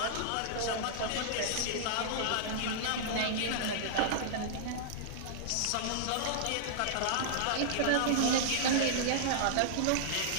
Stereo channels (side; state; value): both; different; correlation -0.01